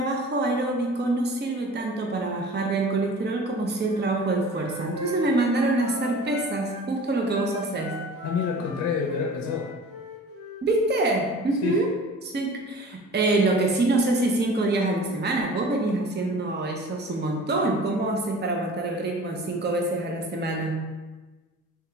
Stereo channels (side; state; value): both; normal; correlation 0.42